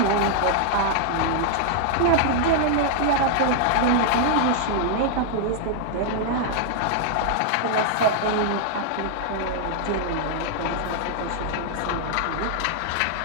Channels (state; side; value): different; both; correlation -0.01